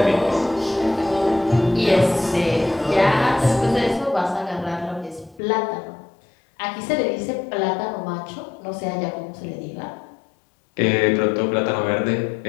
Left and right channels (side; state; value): right; drops out; at 5.4 s